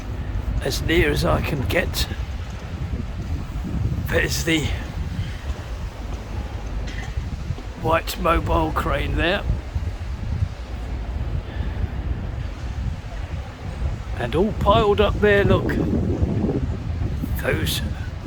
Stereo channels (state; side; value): identical; both; correlation 1.00